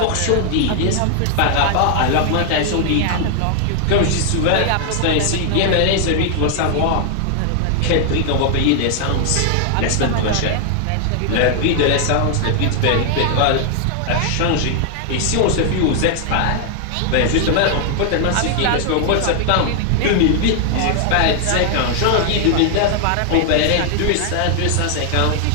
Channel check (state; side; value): different; both; correlation 0.00